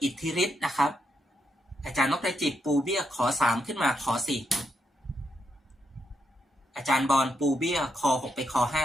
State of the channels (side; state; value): both; normal; correlation 0.80